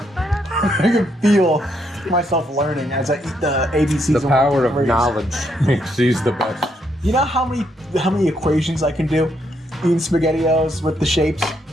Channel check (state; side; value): normal; both; correlation 0.75